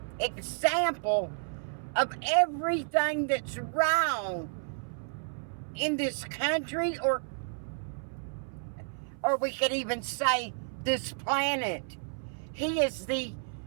example of everything that's wrong in this country, or we could even say this planet. He is the,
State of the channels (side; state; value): left; silent; 57 dB below the other